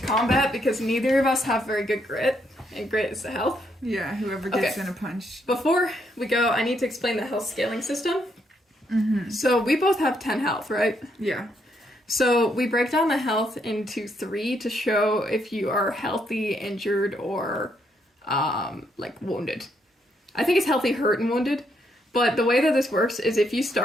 combat because neither of us have very good grit. And grit is the health. Yeah, whoever gets in a punch. Before we go, I need to explain the health scaling system. So we both have 10 health, right? Yeah. So we break down the health into 3 to show if you are healthy, injured, or wounded. I think it's healthy, hurt, and wounded. But the way that this works is if you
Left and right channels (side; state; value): both; normal; correlation 0.75